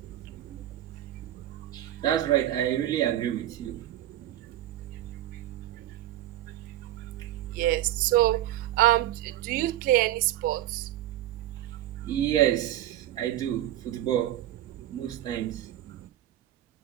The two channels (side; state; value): left; quieter; 13.6 dB